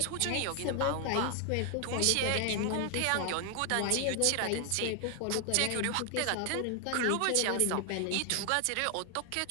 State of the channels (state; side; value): different; both; correlation 0.00